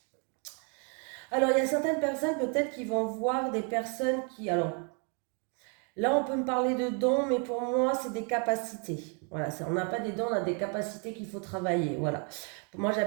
Alors, il y a certaines personnes peut-être qui vont voir des personnes qui... Alors, là, on peut me parler de dons, mais pour moi, c'est des capacités. Voilà, on n'a pas des dons, on a des capacités qu'il faut travailler. Voilà. Pour moi,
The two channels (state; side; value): quieter; left; 38.4 dB